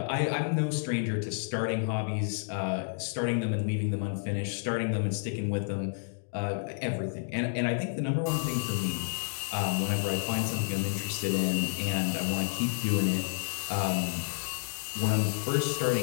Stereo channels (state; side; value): silent; right; digital silence